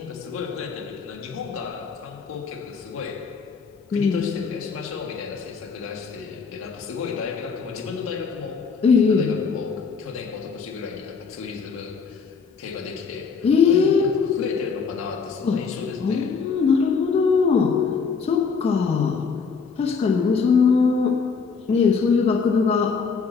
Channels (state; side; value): quieter; right; 5.4 dB